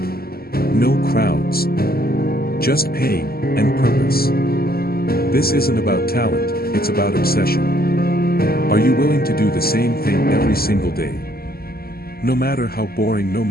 No crowds. Just pain and purpose. This isn't about talent, it's about obsession. Are you willing to do the same thing every single day? No matter how boring, no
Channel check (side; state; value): right; late; 0.44 ms